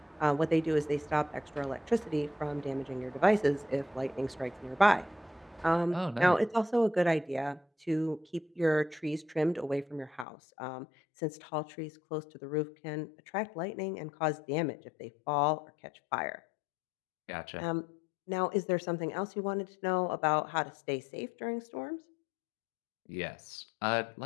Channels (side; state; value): right; drops out; at 10.2 s